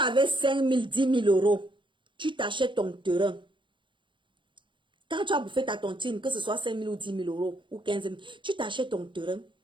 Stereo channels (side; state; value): left; late; 0.23 ms